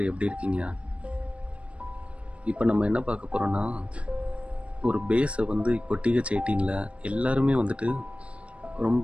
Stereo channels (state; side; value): late; left; 0.061 ms